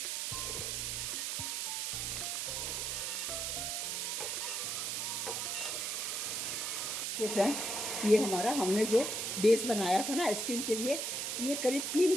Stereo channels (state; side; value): noise; right; hiss, 1 dB below the sound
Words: ये फ्रेंड, ये हमारा, हमने जो बेस बनाया था ना आइसक्रीम के लिए, ये करीब 3